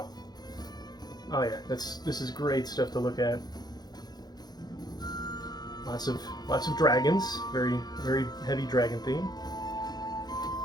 Oh yeah, this is great stuff to look at. Lots of dragons, very heavy dragon theme.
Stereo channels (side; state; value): right; late; 0.19 ms